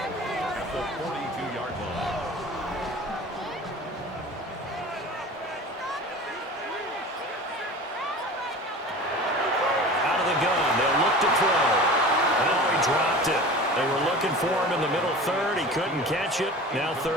at the 42-yard line. Out of the gun, they'll look to throw. Oh, he dropped it. They were looking for him in the middle 3rd. He couldn't catch it. Now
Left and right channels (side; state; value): both; normal; correlation 0.37